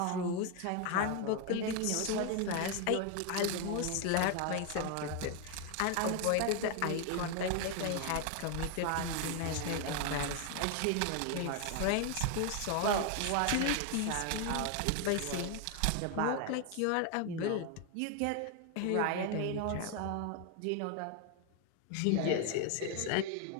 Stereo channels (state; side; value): different; both; correlation 0.01